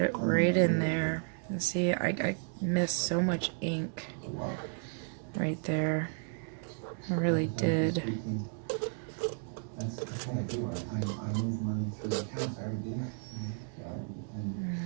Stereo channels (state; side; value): silent; left; 56 dB below the other